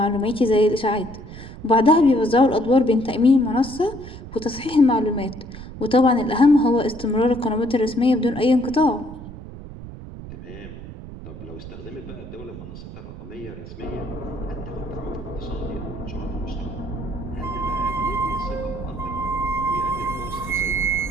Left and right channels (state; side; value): noise; right; rumble, 13 dB below the sound